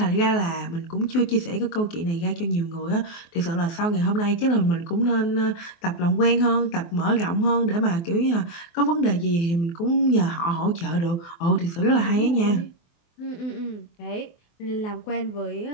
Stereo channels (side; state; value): right; late; 24 ms